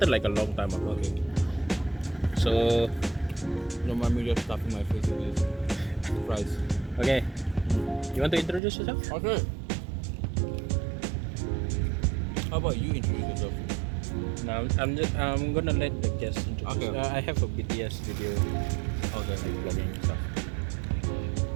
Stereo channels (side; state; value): left; drops out; at 8.6 s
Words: like a long time ago. Okay. So Don't mind me just stuffing my face with this fries. okay. You want to introduce yourself? Okay. How about you introduce yourself? No, I'm gonna let the guests introduce. Okay. I have a BTS video, Okay. like vlogging and stuff.